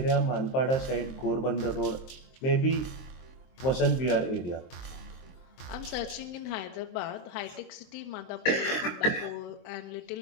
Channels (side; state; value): right; late; 23 ms